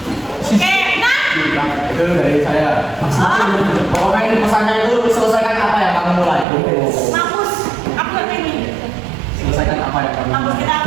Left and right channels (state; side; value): drops out; left; at 6.5 s